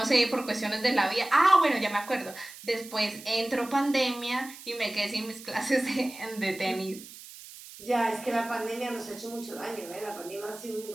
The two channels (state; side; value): noise; right; hiss, 16 dB below the sound